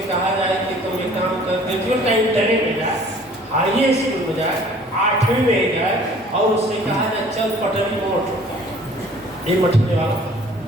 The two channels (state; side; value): normal; both; correlation 0.52